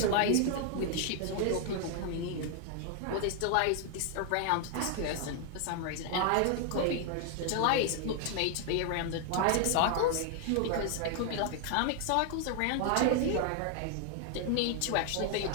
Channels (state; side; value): different; both; correlation 0.00